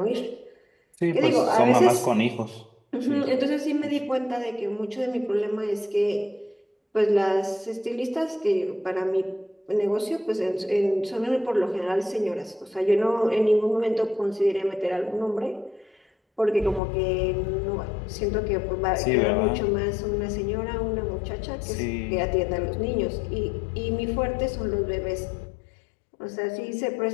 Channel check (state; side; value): drops out; right; at 16.8 s